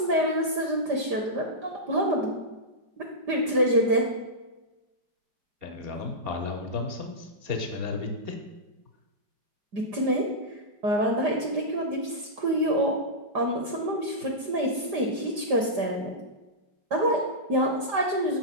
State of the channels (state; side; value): late; left; 5.0 ms